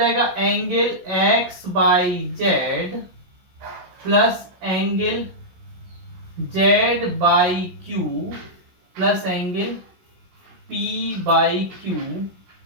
angle X Y Z plus angle Z Y Q plus angle P Y Q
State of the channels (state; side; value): late; left; 16 ms